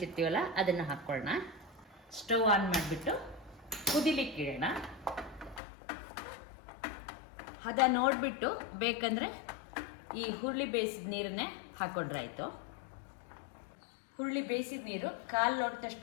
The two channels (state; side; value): drops out; right; at 5.6 s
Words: ಅದನ್ನು ಹಾಕೊಳ್ಳೋಣ. ಸ್ಟವ್ ಆನ್ ಮಾಡಿಬಿಟ್ಟು ಕುದಿಲಿಕ್ಕಿಡೋಣ. ಹದ ನೋಡ್ಬಿಟ್ಟು ಬೇಕಂದ್ರೆ ಈ ಹುರುಳಿ ಬೇಯಿಸಿದ ನೀರನ್ನೇ ಹಾಕೊಂಡ್ರಾಯ್ತು. ಹುರುಳಿ ಬೇಯಿಸಿದ ನೀರು 1/4